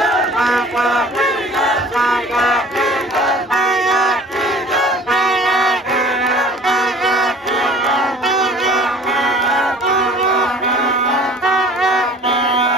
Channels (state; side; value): normal; both; correlation 0.48